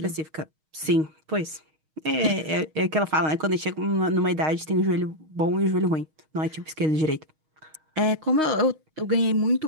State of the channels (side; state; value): left; late; 6.4 ms